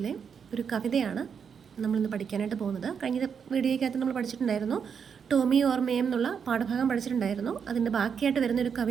ഒരു കവിതയാണ് നമ്മളിന്ന് പഠിക്കാനായിട്ട് പോകുന്നത്. കഴിഞ്ഞ വീഡിയോയ്ക്കകത്ത് നമ്മൾ പഠിച്ചിട്ടുണ്ടായിരുന്നു, ടോമി ഓർ മേം എന്നുള്ള പാഠഭാഗം പഠിച്ചിട്ടുണ്ടായിരുന്നു. അതിൻ്റെ ബാക്കിയായിട്ട് വരുന്നൊരു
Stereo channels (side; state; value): left; quieter; 6.8 dB